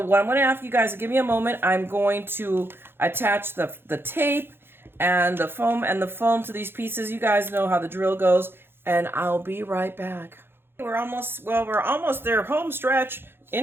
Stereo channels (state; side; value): late; left; 0.11 ms